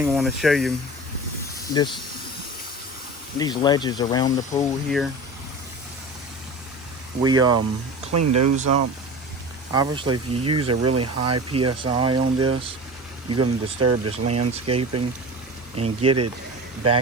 I want to show you, these ledges around the pool here. We cleaned those up. Obviously, if you use a really high PSI on this, you're going to disturb this landscaping and get it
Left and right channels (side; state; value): both; normal; correlation 0.33